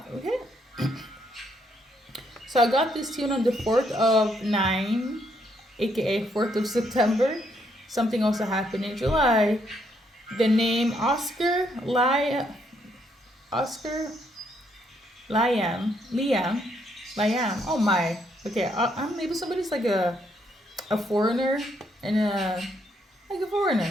Okay. So I got this tune on the 4th of 9, aka 4th of September. Something also happened in July. The name Oscar Liam. Oh my. Okay, maybe somebody's like a foreigner and like a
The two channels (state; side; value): normal; both; correlation 0.73